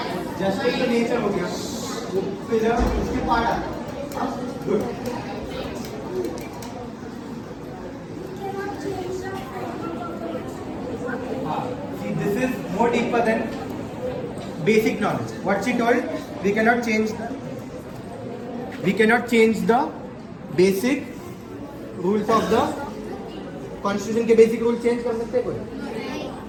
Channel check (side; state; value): both; identical; correlation 1.00